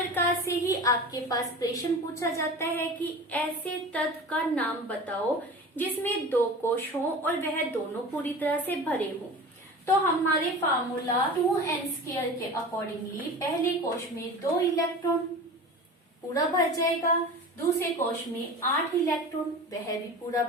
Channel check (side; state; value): both; normal; correlation 0.35